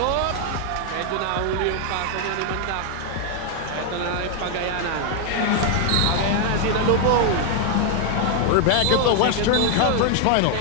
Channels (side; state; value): both; different; correlation 0.00